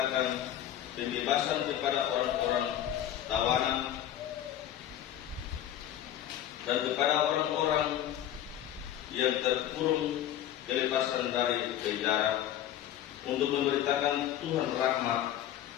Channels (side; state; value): right; quieter; 11.5 dB